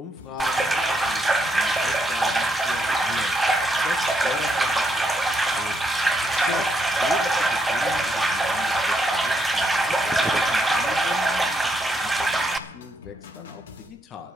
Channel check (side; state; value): both; normal; correlation 0.77